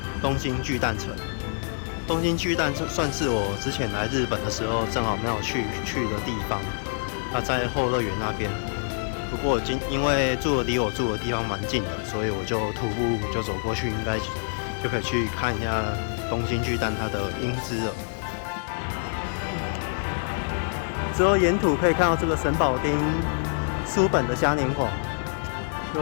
东京巨蛋城。东京巨蛋算是我之前来日本的时候正好没有去的地方。它在后乐园那边。不过因为离我住的地方蛮近的，所以我就徒步就走过去，应该就可以去看一下东京巨蛋它的英姿了。之后沿途可以看到这个神保町书本的嘉年华。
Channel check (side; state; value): right; silent; 61 dB below the other